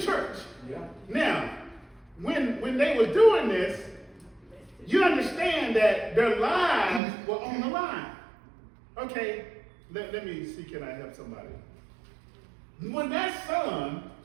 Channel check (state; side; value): drops out; left; at 7.0 s